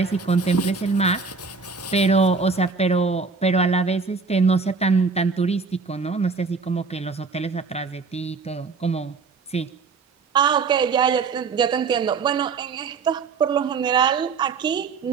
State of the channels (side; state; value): left; quieter; 4.8 dB